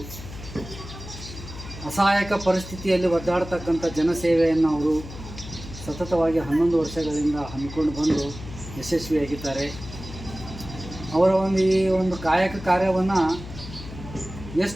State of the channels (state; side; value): noise; left; hum, 13 dB below the sound